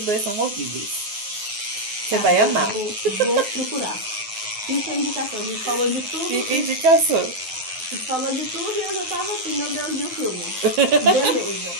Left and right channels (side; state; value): left; late; 9.4 ms